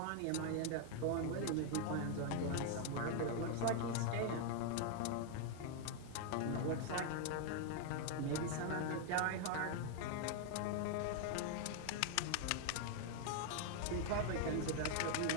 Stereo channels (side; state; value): both; different; correlation 0.00